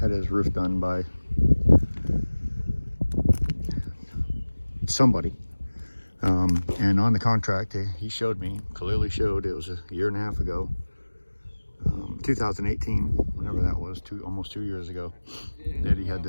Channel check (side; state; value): both; inverted; correlation -1.00